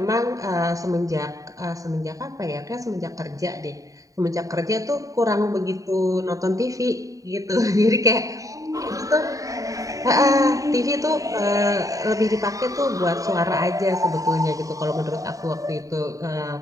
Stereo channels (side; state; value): left; late; 0.16 ms